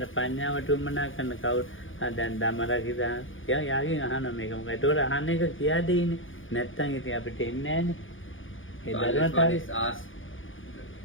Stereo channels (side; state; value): right; late; 0.58 ms